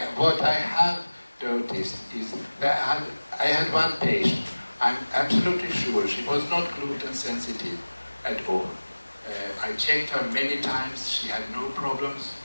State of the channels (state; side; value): inverted; both; correlation -1.00